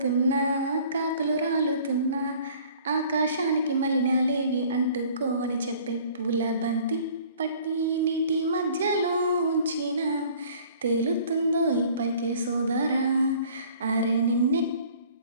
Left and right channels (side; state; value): both; inverted; correlation -0.52